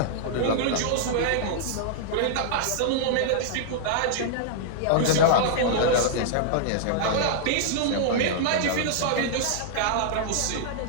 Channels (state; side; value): different; both; correlation -0.01